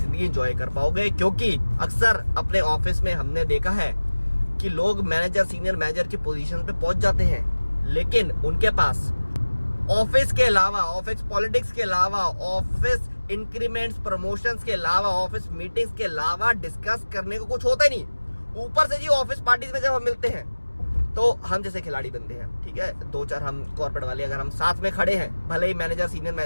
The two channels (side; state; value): both; inverted; correlation -1.00